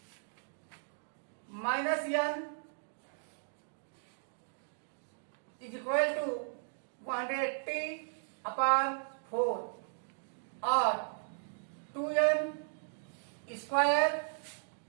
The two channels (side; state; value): left; silent; digital silence